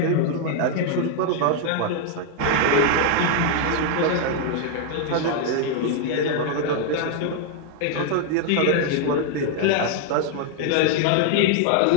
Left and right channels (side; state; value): both; different; correlation 0.00